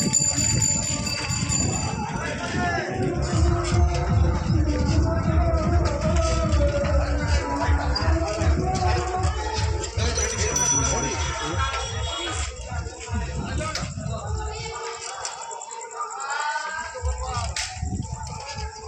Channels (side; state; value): both; identical; correlation 1.00